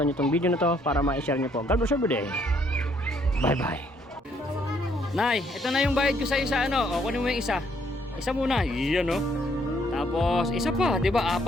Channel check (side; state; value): both; normal; correlation 0.68